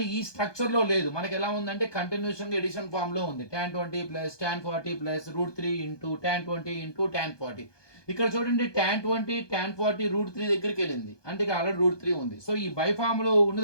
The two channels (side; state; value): right; late; 1.2 ms